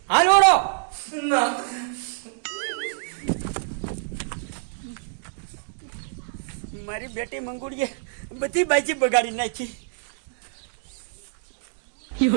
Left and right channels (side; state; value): left; silent; digital silence